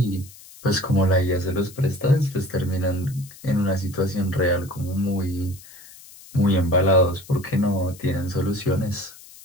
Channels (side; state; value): left; noise; hiss, 20 dB below the sound